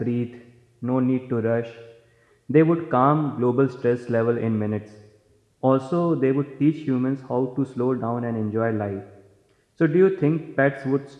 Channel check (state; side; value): identical; both; correlation 1.00